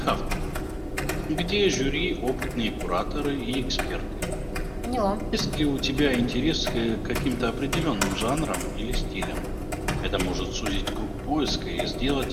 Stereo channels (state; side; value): identical; both; correlation 1.00